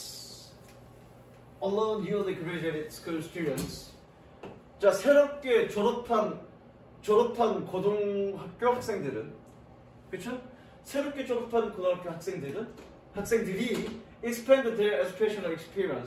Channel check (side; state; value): both; identical; correlation 1.00